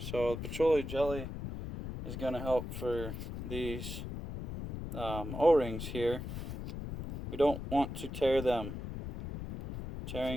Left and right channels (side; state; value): left; noise; rumble, 7 dB below the sound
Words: the petroleum jelly is going to help for these O-rings here. We don't want to tear them.